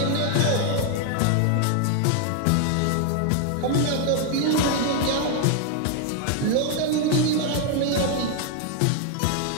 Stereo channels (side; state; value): both; different; correlation 0.00